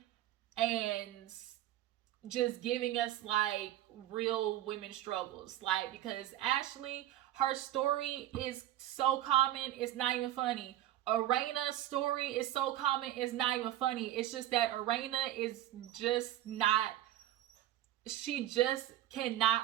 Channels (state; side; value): quieter; left; 13.6 dB